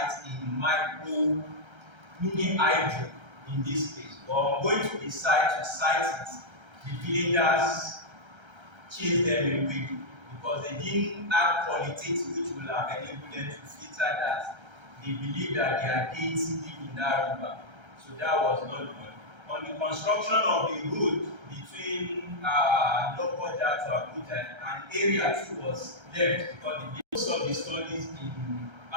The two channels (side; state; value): left; late; 1.3 ms